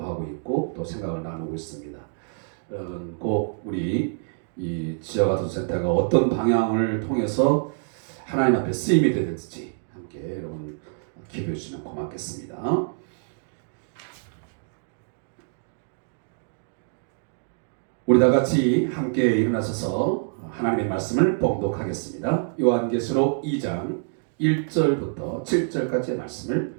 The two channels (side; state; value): left; silent; digital silence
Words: 하고 있고 또 생각을 나누고 있습니다. 꼭 우리 이 지역아동센터가 어떤 방향을 통해서 하나님 앞에 쓰임이 되든지 함께 여러분 기도해 주시면 고맙겠습니다. 우리 다 같이 함께 일어나셔서 하나님의 말씀을 봉독하겠습니다. 요한계시록 2장 1절부터 7절까지의